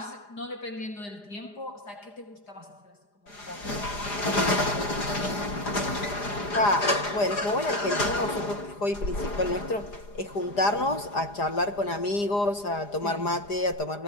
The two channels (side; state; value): right; late; 4.9 ms